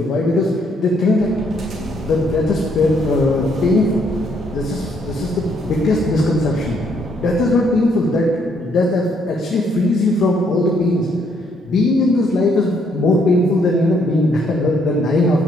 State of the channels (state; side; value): normal; both; correlation 0.70